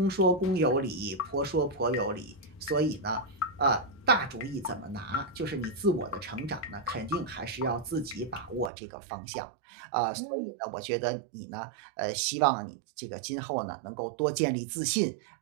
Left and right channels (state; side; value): drops out; left; at 8.7 s